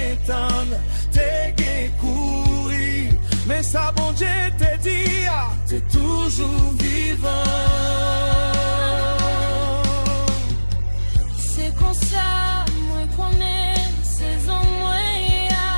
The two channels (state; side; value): inverted; both; correlation -1.00